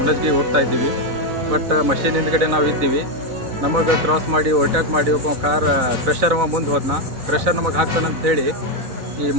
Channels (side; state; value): left; late; 3.9 ms